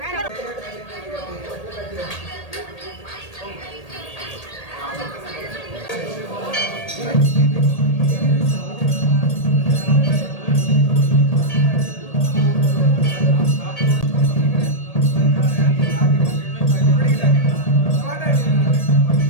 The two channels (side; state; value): right; late; 1.8 ms